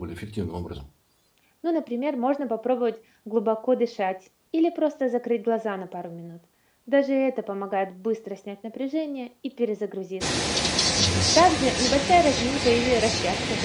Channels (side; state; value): both; identical; correlation 1.00